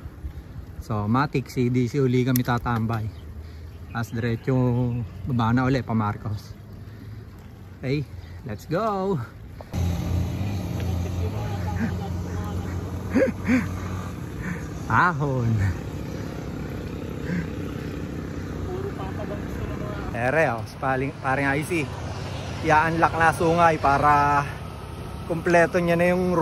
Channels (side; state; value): both; identical; correlation 1.00